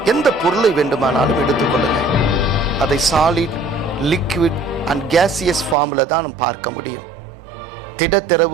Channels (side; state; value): left; drops out; at 5.8 s